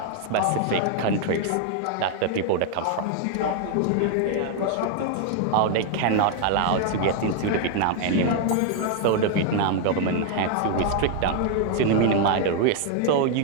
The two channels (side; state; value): both; different; correlation 0.00